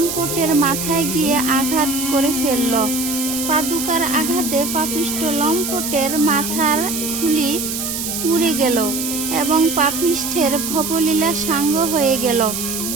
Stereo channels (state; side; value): noise; right; hiss, 4 dB below the sound